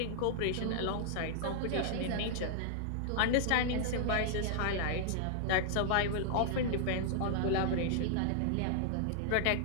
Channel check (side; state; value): both; different; correlation -0.01